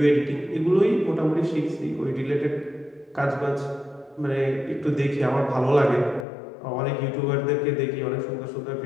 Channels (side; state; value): right; drops out; at 6.2 s